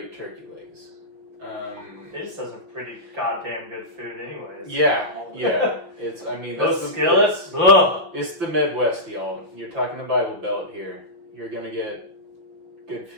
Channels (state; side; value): late; left; 6.2 ms